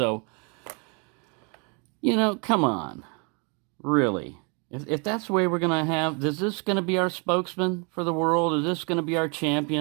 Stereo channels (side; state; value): left; quieter; 34.4 dB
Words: come on. Really. If that's the way we're going to have, is this going to be our spokesman for the world? Is this going to be our